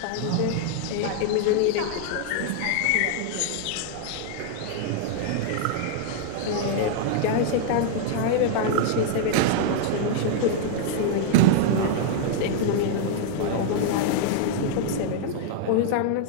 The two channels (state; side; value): different; both; correlation 0.00